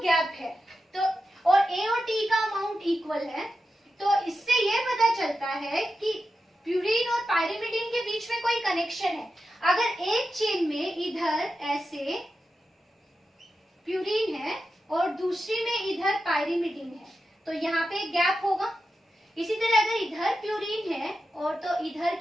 है तो और ए और टी का अमाउंट इक्वल है, तो इससे ये पता चलता है कि प्यूरिन और पायरिमिडिन के बीच में कोई कनेक्शन है। अगर एक चेन में इधर ऐसे प्यूरिन है और दूसरी में इधर पायरिमिडिन है तो यहाँ पे एक गैप होगा। इसी तरह अगर इधर प्यूरिन है और तो इधर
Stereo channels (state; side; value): normal; both; correlation 0.90